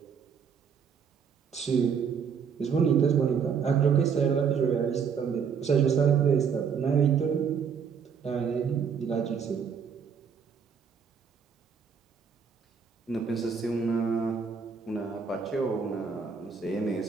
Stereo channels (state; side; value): quieter; left; 6.6 dB